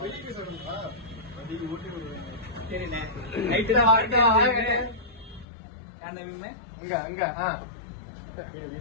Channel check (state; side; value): drops out; right; at 5.5 s